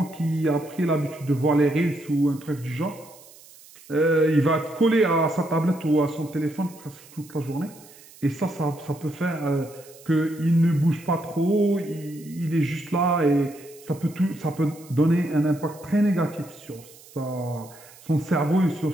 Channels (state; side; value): noise; right; hiss, 22 dB below the sound